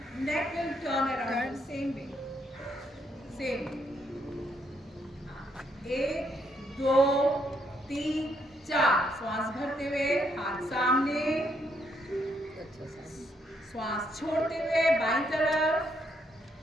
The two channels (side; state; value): both; normal; correlation 0.74